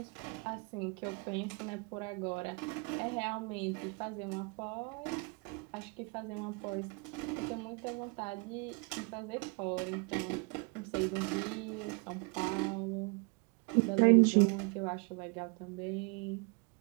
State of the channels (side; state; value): left; quieter; 31.4 dB